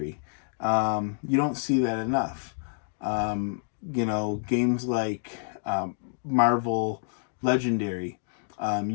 You don't see that enough. Games like Marvel Legendary,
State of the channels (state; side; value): silent; right; digital silence